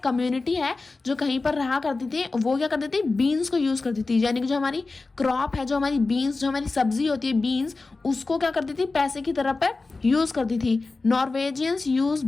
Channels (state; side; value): quieter; right; 3.7 dB